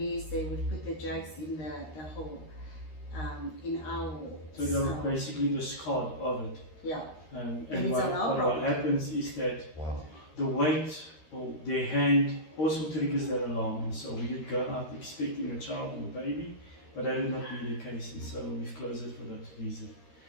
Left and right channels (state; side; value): late; right; 13 ms